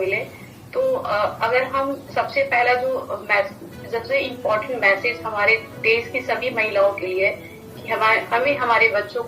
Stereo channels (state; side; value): identical; both; correlation 1.00